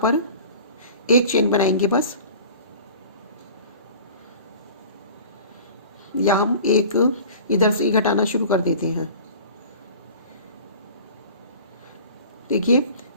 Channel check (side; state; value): both; inverted; correlation -0.42